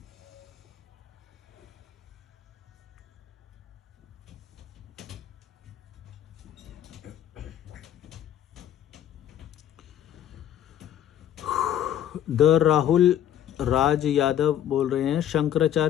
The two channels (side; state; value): right; quieter; 10.7 dB